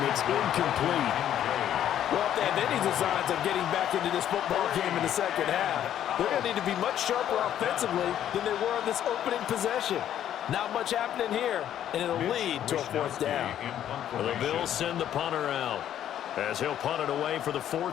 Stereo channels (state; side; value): quieter; right; 10.8 dB